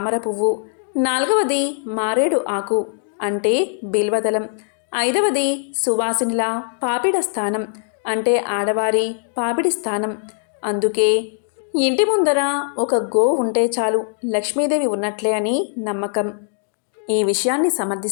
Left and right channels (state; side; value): silent; right; digital silence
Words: పువ్వు, నాలుగవది మారేడు ఆకు అంటే బిల్వదళం, ఐదవది సువాసినిల పాపిడ స్థానం అంటే ఆడవారి పాపిడి స్థానం. అందుకే ఇంటి ముందర ఒక గో ఉంటే చాలు లక్ష్మీదేవి ఉన్నట్లే అని నమ్మకం. ఈ విషయాన్ని